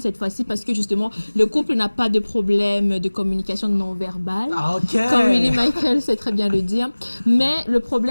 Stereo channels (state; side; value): inverted; both; correlation -1.00